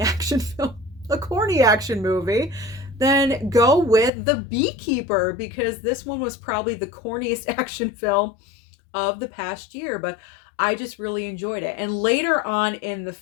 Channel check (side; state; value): right; drops out; at 4.1 s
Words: action film, a corny action movie, then go with The Beekeeper, because this one was probably the corniest action film of the past year, but I just really enjoyed it. And later on in the